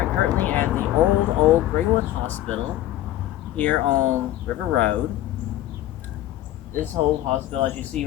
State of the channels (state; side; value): quieter; right; 14.0 dB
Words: currently at the old Greenwood Hospital here on River Road. This whole hospital, as you see